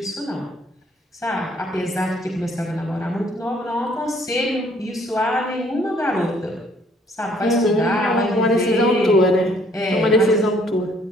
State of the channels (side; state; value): both; normal; correlation 0.62